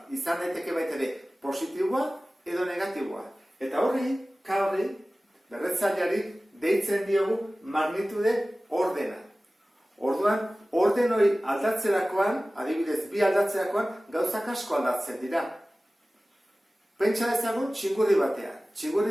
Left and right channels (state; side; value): normal; both; correlation 0.97